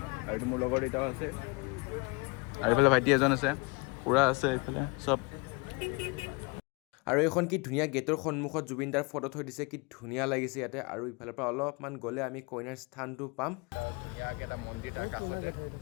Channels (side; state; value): right; quieter; 29.3 dB